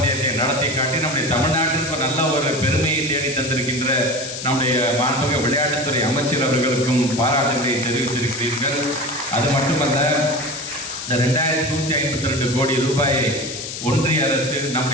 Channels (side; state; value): left; noise; hiss, 8 dB below the sound